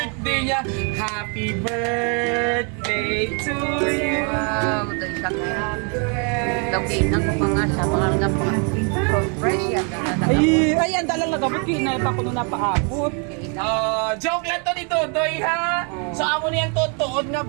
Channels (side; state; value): left; quieter; 37.8 dB